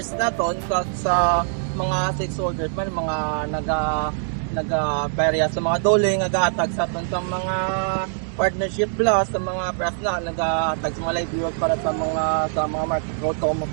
naton sa mga stakeholders man mga naga-barya sa mga dole nga gahatag sa mga partnership plus sa mga press na nag-tag sa mga livelihood para sa mga market road to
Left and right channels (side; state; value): left; silent; digital silence